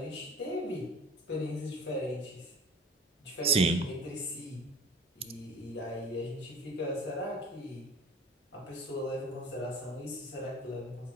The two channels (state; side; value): normal; both; correlation 0.42